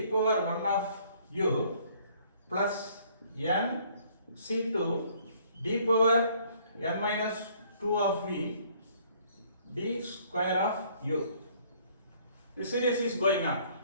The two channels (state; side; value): inverted; both; correlation -0.60